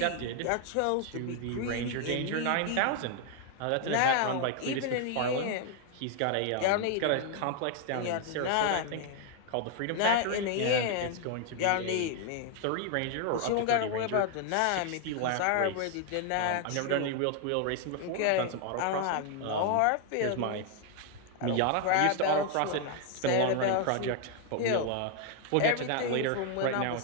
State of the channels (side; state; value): both; different; correlation 0.00